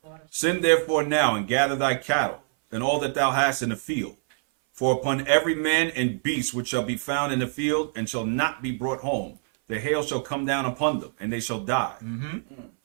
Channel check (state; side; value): silent; left; 60 dB below the other